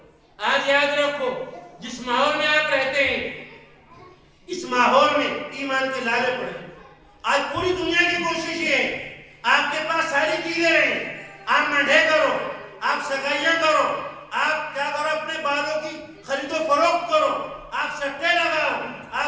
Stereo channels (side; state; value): both; identical; correlation 1.00